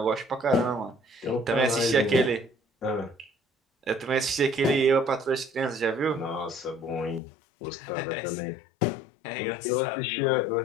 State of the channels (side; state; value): right; drops out; at 7.2 s